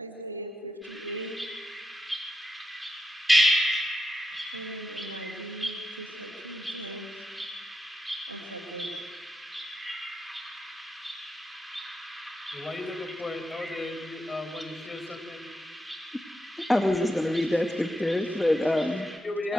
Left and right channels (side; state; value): both; normal; correlation 0.86